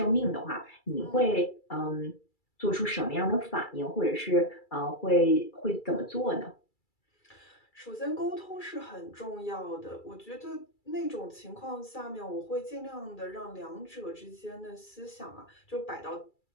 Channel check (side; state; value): right; late; 2.3 ms